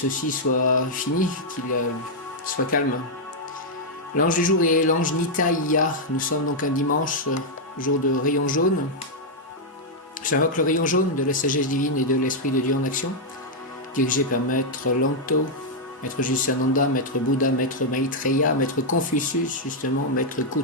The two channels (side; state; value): both; normal; correlation -0.03